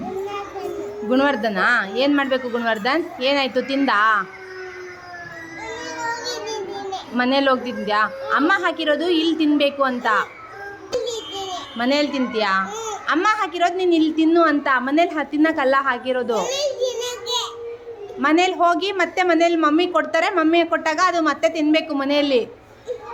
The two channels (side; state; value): both; identical; correlation 1.00